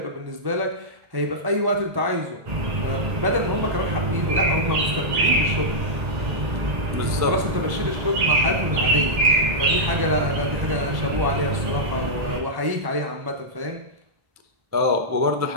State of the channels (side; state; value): left; late; 1.1 ms